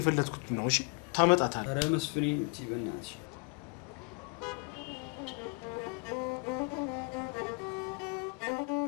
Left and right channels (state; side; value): quieter; right; 33.1 dB